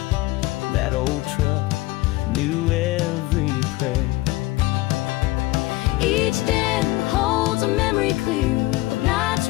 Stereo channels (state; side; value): quieter; right; 19.2 dB